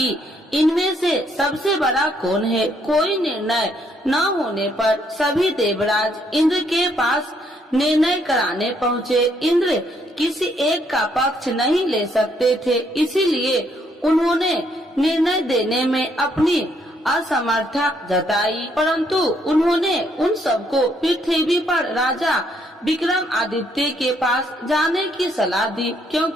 इनमें से सबसे बड़ा कौन है। कोई निर्णय न होने पर सभी देवराज इंद्र के पास निर्णय कराने पहुँचे। इंद्र किसी एक का पक्ष नहीं ले सकते थे, इसीलिए उन्होंने निर्णय देने में अपनी असमर्थता जताई। परंतु उन्होंने उन सबको पृथ्वी पर राजा विक्रमादित्य के पास जाने की सलाह दी,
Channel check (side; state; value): both; normal; correlation 0.70